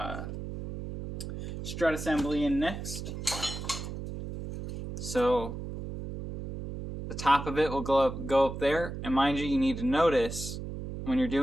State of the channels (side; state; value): right; noise; hum, 7 dB below the sound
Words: strut assembly in next. So the top of it will go up there, and mind you need to notice when you're